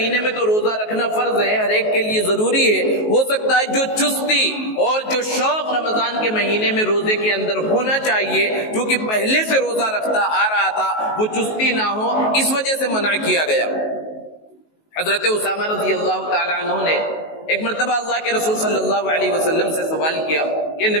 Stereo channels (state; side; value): late; right; 19 ms